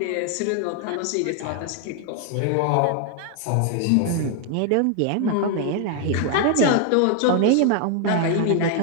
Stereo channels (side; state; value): both; different; correlation 0.00